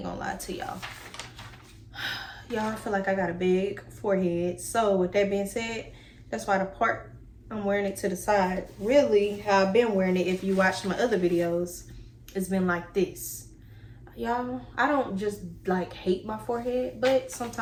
gonna lie to y'all. Y'all, I feel like I got a big forehead. So with that being said, that's why the part I'm wearing it to the side, really how I've been wearing it, if you watch my other videos, it's been like this. Y'all, I don't just like hate my forehead, but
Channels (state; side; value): identical; both; correlation 1.00